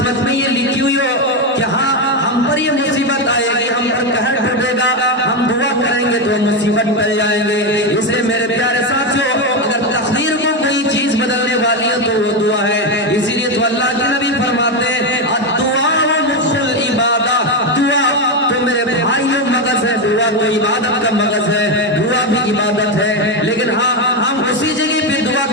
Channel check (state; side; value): normal; both; correlation 0.10